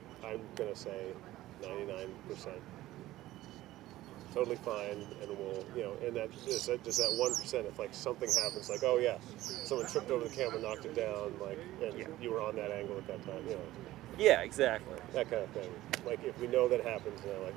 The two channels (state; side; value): quieter; left; 15.9 dB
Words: I'm gonna say, 99% totally fine, and we'll, you know, and that just that 1%. If like something happens, like oh yeah, someone tripped over the camera, knocked it down, like, and Yeah. you were on that angle at that time, you know, Yeah, exactly. that kind of thing. Like if we know that happens, then like